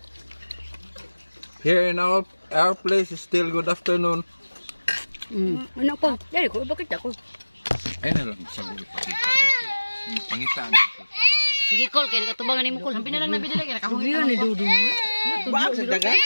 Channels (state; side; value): inverted; both; correlation -1.00